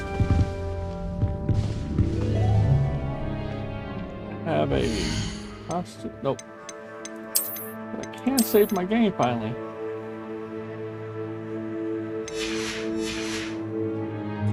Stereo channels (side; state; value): both; identical; correlation 1.00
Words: Have a constant. Nope. I can't save my game finally.